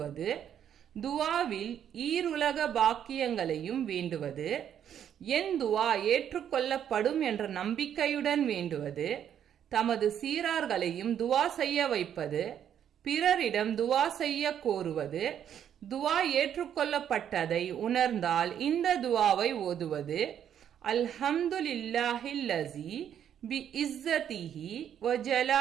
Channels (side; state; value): left; quieter; 9.5 dB